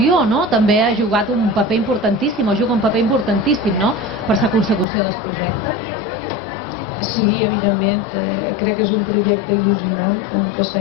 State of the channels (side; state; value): right; drops out; at 4.9 s